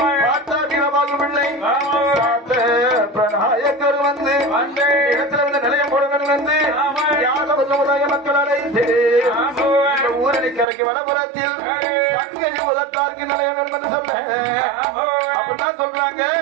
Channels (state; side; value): drops out; left; at 10.7 s